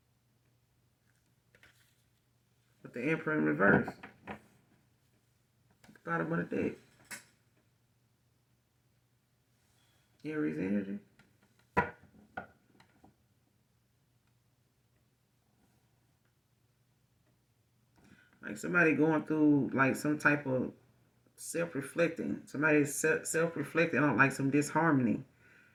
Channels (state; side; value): identical; both; correlation 1.00